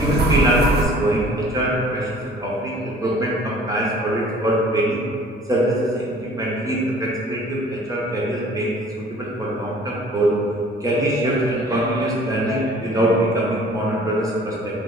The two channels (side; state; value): both; normal; correlation 0.51